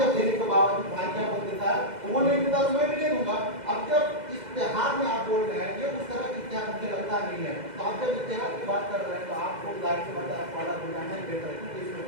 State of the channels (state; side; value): late; left; 2.0 ms